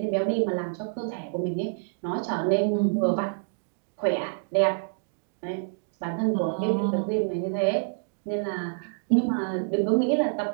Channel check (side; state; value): left; silent; digital silence